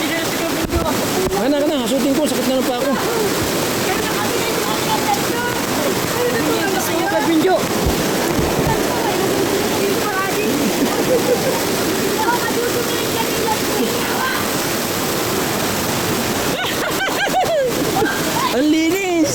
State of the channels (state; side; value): noise; left; rumble, 23 dB below the sound